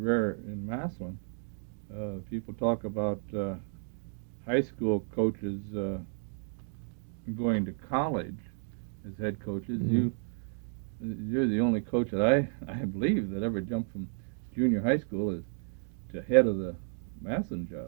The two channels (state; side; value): silent; left; 55 dB below the other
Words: in Massillon. People talk about high school coaches going to college as head coaches. Mm-hmm. You're the only coach that I believe that ever jumped from junior high school to head of the Massillon